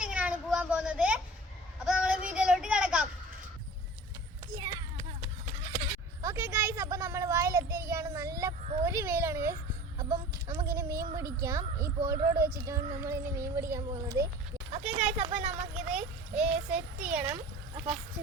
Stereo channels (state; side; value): normal; both; correlation 0.41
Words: പോകാൻ പോകുന്നത്. അപ്പോൾ നമ്മൾ വീഡിയോയിലോട്ട് കിടക്കാം. ഓക്കെ ഗൈസ്, അപ്പോൾ നമ്മൾ വയലെത്തിയിരിക്കുകയാണ്. നല്ല പൊരി വെയിലാണ് ഗൈസ്. അപ്പം നമുക്കിനി മീൻ പിടിക്കാം. ഈ പോൾ റോഡ് വെച്ചിട്ടാണ് നമ്മളിനി മീൻ പിടിക്കാൻ പോകുന്നത്. ഓക്കെ ഗൈസ്, അപ്പോൾ നമുക്കിത് സെറ്റ് ചെയ്യണം. ഫസ്റ്റ്